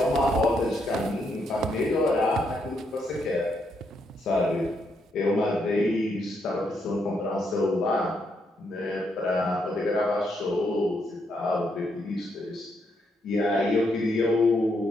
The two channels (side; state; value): both; normal; correlation 0.77